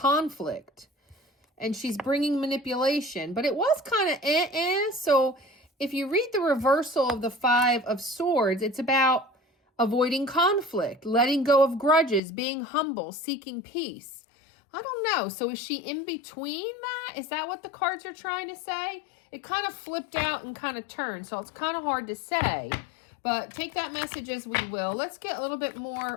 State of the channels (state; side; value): drops out; right; at 12.2 s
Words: and she's bringing manipulation, but it was kind of So if you read the reversal of the Five of Swords, it's about avoiding conflict, letting go of grudges, being humble, seeking peace. I don't know. So is she in between that? Is that what the cards are trying to say? It kind of flipped out and kind of turned, so it's kind of hard to say. But take that message as we will. Let's get a little bit